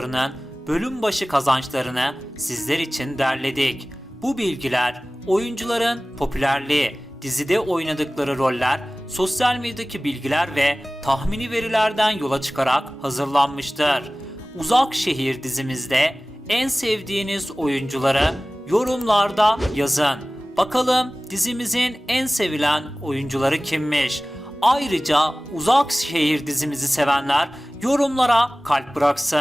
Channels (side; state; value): both; normal; correlation 0.98